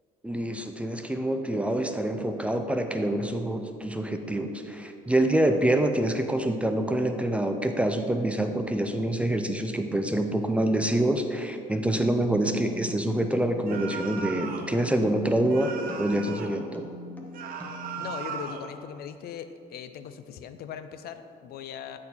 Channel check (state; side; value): normal; both; correlation 0.78